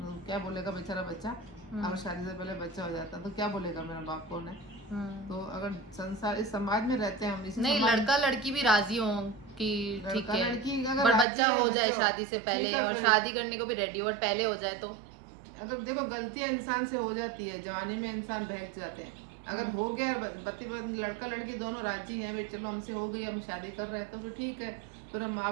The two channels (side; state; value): left; drops out; at 11.2 s